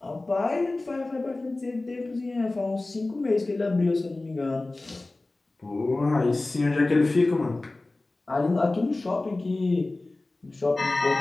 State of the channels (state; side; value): quieter; right; 3.0 dB